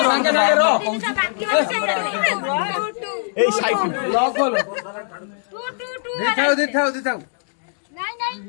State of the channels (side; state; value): right; silent; digital silence